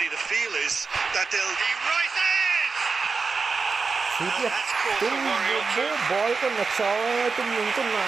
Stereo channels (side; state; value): left; quieter; 4.7 dB